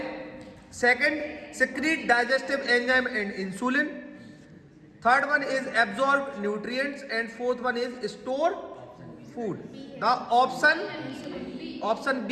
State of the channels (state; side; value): identical; both; correlation 1.00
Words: second secrete digestive enzyme and insulin, third one is absorb nutrients and fourth one is store food. The option